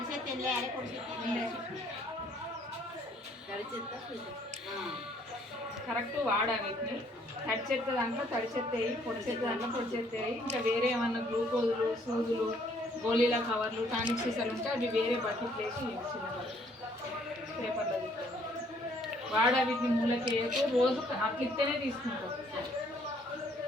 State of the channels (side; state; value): both; normal; correlation 0.64